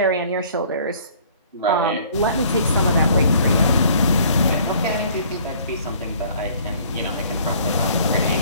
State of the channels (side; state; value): both; inverted; correlation -0.55